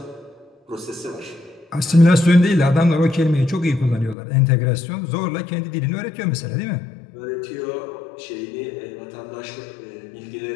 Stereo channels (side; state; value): right; drops out; at 4.2 s